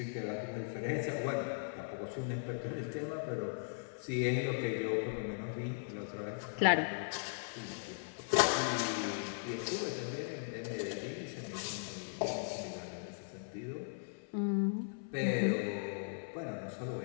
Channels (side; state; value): right; silent; 52 dB below the other